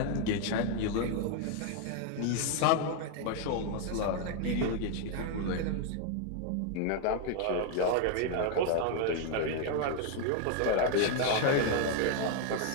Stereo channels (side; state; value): both; different; correlation 0.00